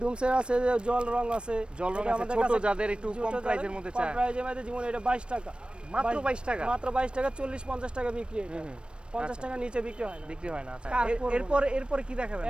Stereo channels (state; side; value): late; left; 0.057 ms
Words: ডুমসের আছে যে জল রং আছে, জল রং এটা আছে, আমাদের ছোট কাছে যাদের একটু ছোট কম যাদের প্রাইসের মধ্যে কম চায়। প্রাইসের মধ্যে, যেমন এটা 22 টাকা, মাত্র 22 টাকা। মাত্র 22 টাকা, 40-50 টাকা বিক্রি এটা। 50 টাকা নিচে বিক্রি হয় না। বিক্রি হয় না। আচ্ছা, কার করবো? এরপরে কি দেখাবেন